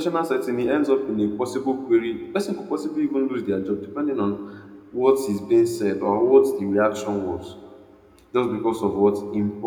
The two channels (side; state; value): both; identical; correlation 1.00